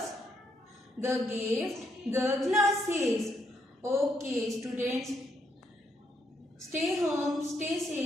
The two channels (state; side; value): normal; both; correlation 0.76